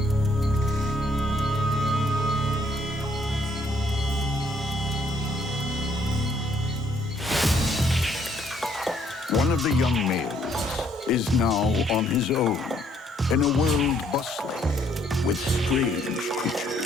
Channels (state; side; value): normal; both; correlation 0.67